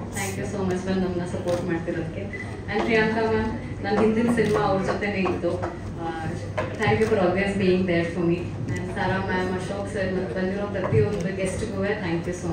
thank you so much ಬಂದು ನಮ್ಮನ್ನ ಸಪೋರ್ಟ್ ಮಾಡ್ತಿರೋದಕ್ಕೆ. ಆ್ಯಂಡ್ ಪ್ರಿಯಾಂಕಾ ಮ್ಯಾಮ್, ನನ್ನ ಹಿಂದಿನ ಸಿನಿಮಾ ಅವ್ರ ಜೊತೆನೇ ಇತ್ತು. Thank you for always being there for me. And Sara ma'am, Ashok sir, ಮತ್ತು ಬಂದಿರೋ ಪ್ರತಿಯೊಂದು ಗೆಸ್ಟ್ಗೂ ಥ್ಯಾಂಕ್ ಯು ಸೋ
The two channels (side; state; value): both; identical; correlation 1.00